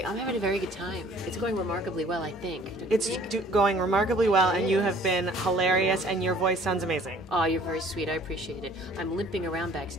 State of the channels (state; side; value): normal; both; correlation 0.53